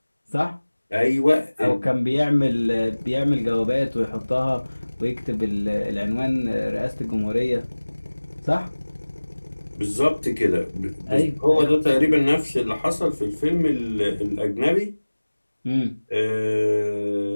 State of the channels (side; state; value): both; inverted; correlation -1.00